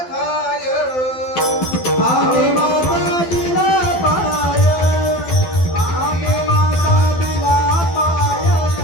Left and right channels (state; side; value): late; right; 12 ms